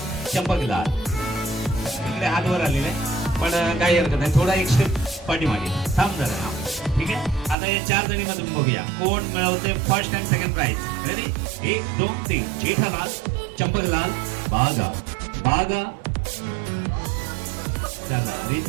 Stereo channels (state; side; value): drops out; left; at 7.6 s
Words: चंपकलाल. इकडे हात वर आलेले पण काही हरकत नाही, थोडा एक स्टेप पाठीमागे थांब जरा. हा, ठीक आहे. आता या 4 जणी मधून बघूया कोण मिळवते first and second prize. Ready, 1 2 3. Jethalal Champaklal Bagha, Bagha. चला